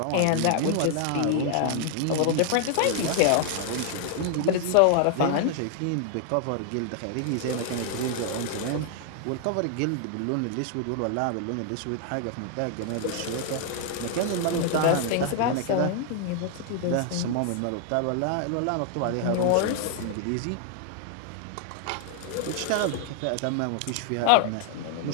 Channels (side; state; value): both; different; correlation 0.00